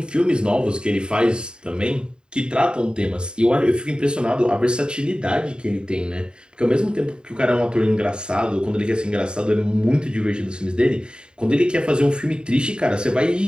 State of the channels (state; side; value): late; left; 0.050 ms